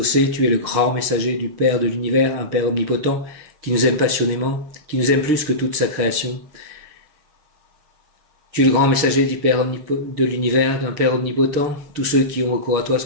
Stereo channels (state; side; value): late; left; 6.6 ms